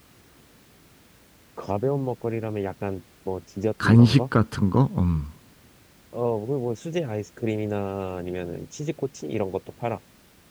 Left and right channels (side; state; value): both; identical; correlation 1.00